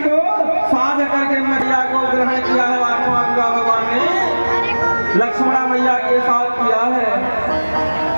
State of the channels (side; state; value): both; inverted; correlation -1.00